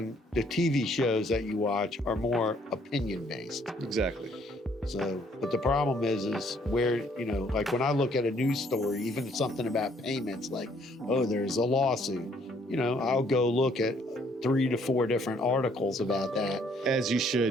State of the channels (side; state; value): both; normal; correlation 0.65